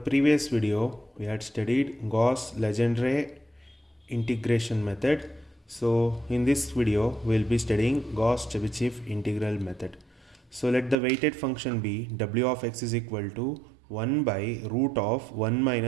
video we had studied Gauss-Legendre integration method. So in this video we will be studying Gauss-Chebyshev integral method. So let the weighted function be w of x is equal to 1 by root of 1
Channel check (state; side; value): drops out; left; at 11.0 s